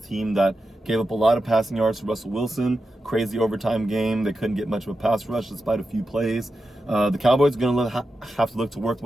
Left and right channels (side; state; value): both; normal; correlation 0.90